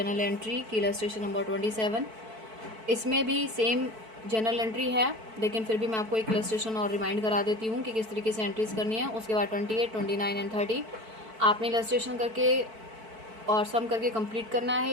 एंट्री की इलस्ट्रेशन नंबर 27। इसमें भी सेम जनरल एंट्री है, लेकिन फिर भी मैं आपको एक इलस्ट्रेशन और रिमाइंड करा देती हूँ कि किस तरीके से एंट्रीज करनी है। उसके बाद 28, 29 एंड 30 आपने इलस्ट्रेशन करके और सम करके कंप्लीट करना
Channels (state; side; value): late; left; 4.5 ms